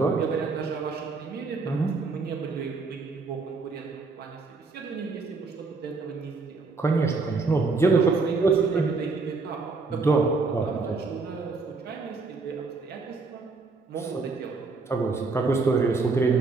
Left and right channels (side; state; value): left; quieter; 4.1 dB